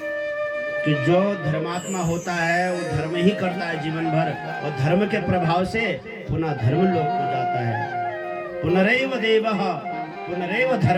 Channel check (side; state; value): both; identical; correlation 1.00